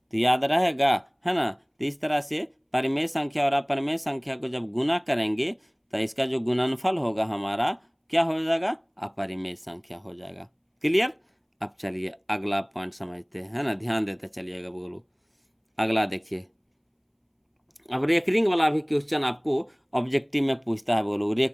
याद रहेगा, है ना। तो इस तरह से परिमेय संख्या और अपरिमेय संख्या को जब गुना करेंगे तो इसका जो गुणनफल होगा हमारा क्या हो जाएगा, अपरिमेय संख्या हो जाएगा। क्लियर। अब चलिए अगला पॉइंट समझते हैं, है ना, ध्यान देते चलिएगा बोलो। अगला देखिए, अब रेकरिंग वाला भी क्वेश्चन आपको ऑब्जेक्टिव में पूछता है, बोलो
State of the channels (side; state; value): both; identical; correlation 1.00